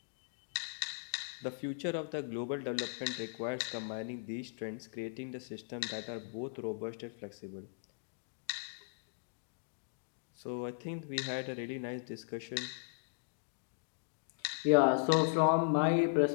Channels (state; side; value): silent; right; digital silence